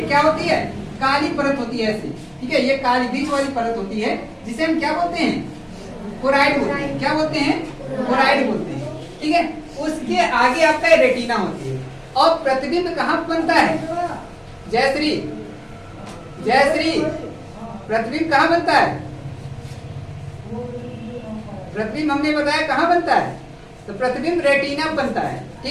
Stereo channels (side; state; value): both; identical; correlation 1.00